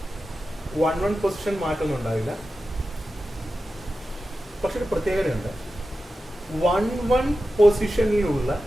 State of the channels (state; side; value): normal; both; correlation 0.92